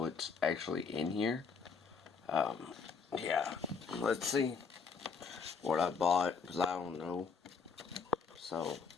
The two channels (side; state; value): right; quieter; 5.5 dB